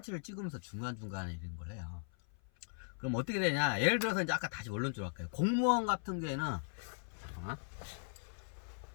찍으면서 중간중간에 이런 걸 해요. 그럼 어떻게 되냐, 예를 들어서 이제 아까 다시 원론적으로 할까요. 공무원 같은 경우에는, 잠깐만,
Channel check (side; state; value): right; silent; 52 dB below the other